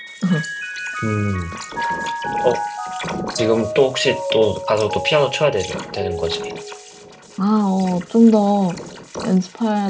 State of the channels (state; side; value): identical; both; correlation 1.00